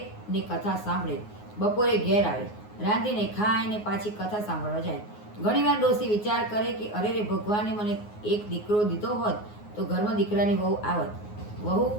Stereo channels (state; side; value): late; right; 9.6 ms